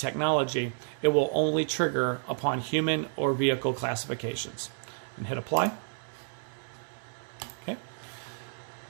it will only trigger upon human or vehicle classifications. And hit apply. Okay.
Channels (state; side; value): silent; left; 57 dB below the other